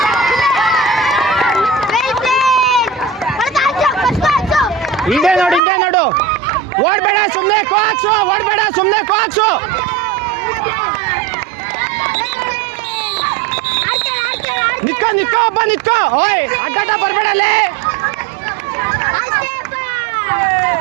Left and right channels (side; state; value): left; drops out; at 5.6 s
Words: ಹಿಂದೆ ನೋಡು, ಹಿಂದೆ ನೋಡು, ಓಡ್ಬೇಡ ಸುಮ್ಮನೆ ಕೋಕ್ಸು, ಓಡ್ಬೇಡ ಸುಮ್ಮನೆ ಕೋಕ್ಸು. ನಿತ್ಕೋ ನಿತ್ಕೋ ಒಬ್ಬ ನಿತ್ಕೋ. ಓಯ್ ಅಡ್ಡಾಟ ಬರ್ಬೇಡಲ್ಲೇ.